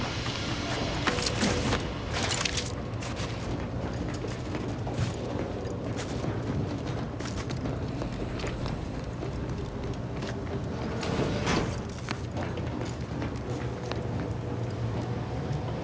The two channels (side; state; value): both; identical; correlation 1.00